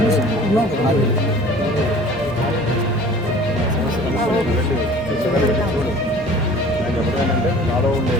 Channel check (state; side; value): normal; both; correlation 0.46